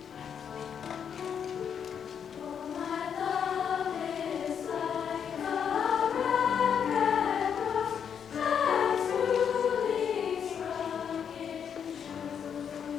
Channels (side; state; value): right; quieter; 7.7 dB